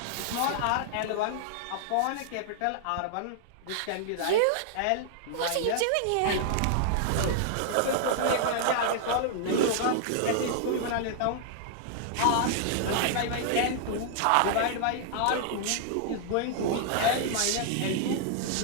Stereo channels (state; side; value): different; both; correlation -0.01